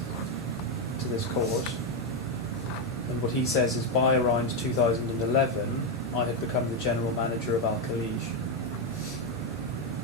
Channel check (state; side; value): normal; both; correlation 0.05